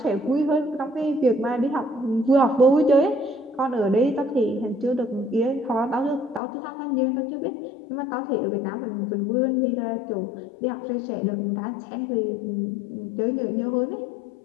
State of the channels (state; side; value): drops out; right; at 6.4 s